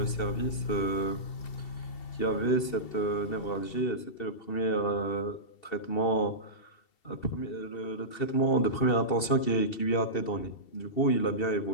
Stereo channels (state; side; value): late; right; 2.7 ms